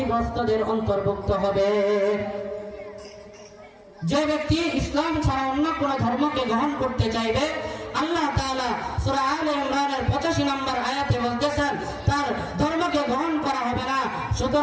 অন্তর্ভুক্ত হবে। যে ব্যক্তি ইসলাম ছাড়া অন্য কোন ধর্মকে গ্রহণ করতে চাইবে, আল্লাহ তাআলা সূরা আলে ইমরানের 85 নম্বর আয়াতে বলতেছেন তার ধর্মকে গ্রহণ করা হবে না,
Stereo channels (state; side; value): identical; both; correlation 1.00